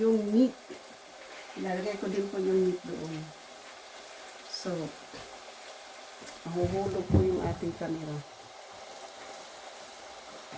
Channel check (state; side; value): identical; both; correlation 1.00